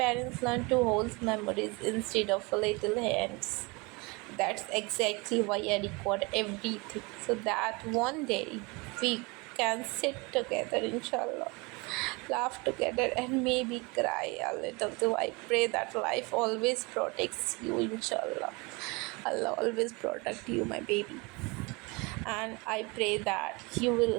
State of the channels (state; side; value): quieter; left; 27.2 dB